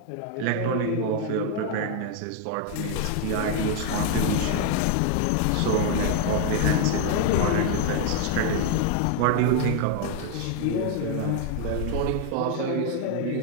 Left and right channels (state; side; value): different; both; correlation 0.00